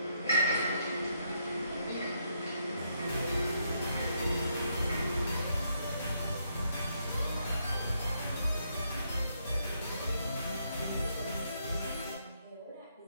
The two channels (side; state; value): both; inverted; correlation -0.76